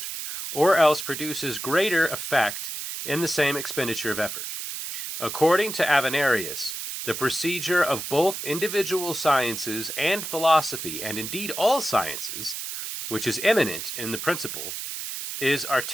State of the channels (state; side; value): noise; right; hiss, 5 dB below the sound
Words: or else produces greater effect in the same expenditure of effort. According to Avenarius, the procedure of both individual sciences and philosophy, and indeed all sciences, which is immanent in the principle, is